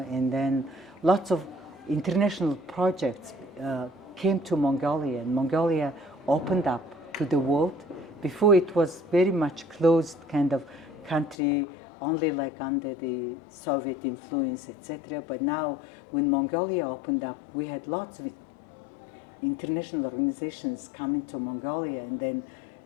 and then lots of international projects came to Mongolia, and Mongolia opened up to the world. Before it was very much closed kind of country, only like under the Soviet influence, etc. But now when Mongolia opened up, we had lots of international organizations coming to Mongolia, and then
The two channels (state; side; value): drops out; right; at 11.4 s